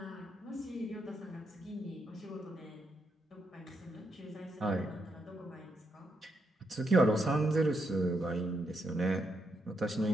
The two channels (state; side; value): normal; both; correlation 0.80